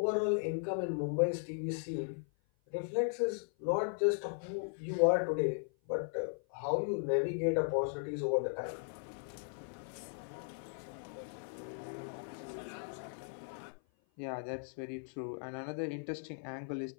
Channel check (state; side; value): silent; right; 53 dB below the other